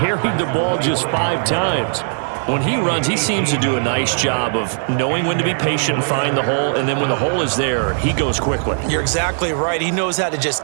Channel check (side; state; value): left; silent; digital silence